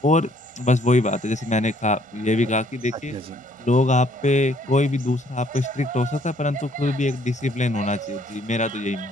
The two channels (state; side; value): normal; both; correlation 0.64